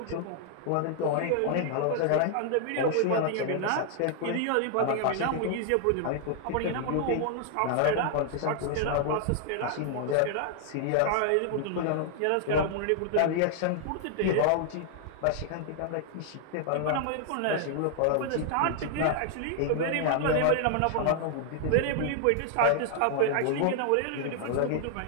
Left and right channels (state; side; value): different; both; correlation 0.00